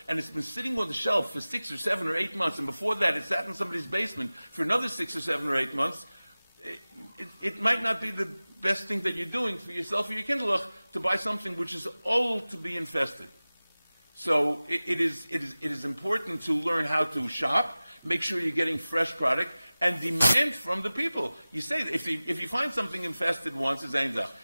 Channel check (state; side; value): inverted; both; correlation -0.98